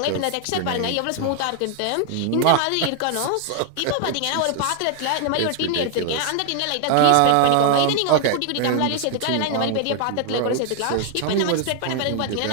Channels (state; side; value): different; both; correlation 0.00